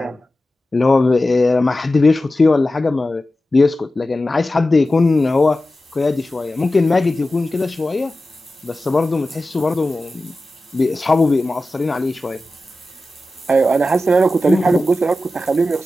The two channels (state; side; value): normal; both; correlation 0.94